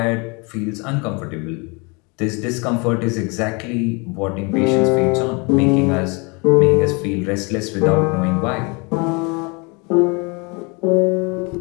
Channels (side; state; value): right; quieter; 30.3 dB